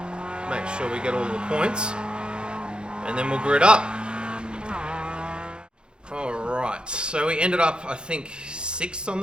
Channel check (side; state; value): left; late; 0.051 ms